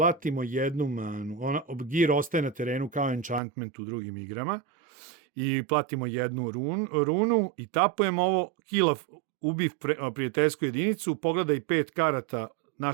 jednu manu, gear ostaje na terenu kao enchantment u drugim igrama, i platimo jednu runu i tapujemo ovo, kill ubiv prijateljsku jedinicu, pogledaj 5 karata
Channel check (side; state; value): left; drops out; at 3.4 s